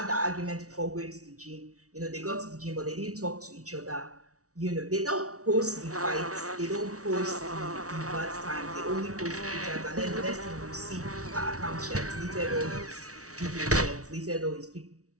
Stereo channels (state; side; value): late; left; 0.66 ms